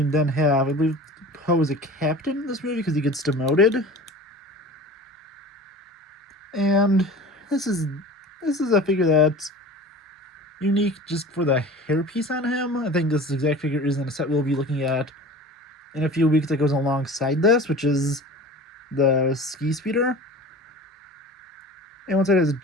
then have, I believe, Poe is a captain in this movie because he gets demoted. And this is a figure that's unique just for the hairpiece on him. I think this exact figure is in a set we'll be looking at in a few weeks that goes alongside this, which is the Ski Speeder. And one side has a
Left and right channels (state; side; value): normal; both; correlation 0.39